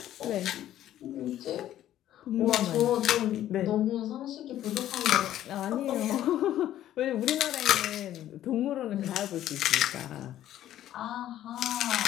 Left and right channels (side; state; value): right; quieter; 12.4 dB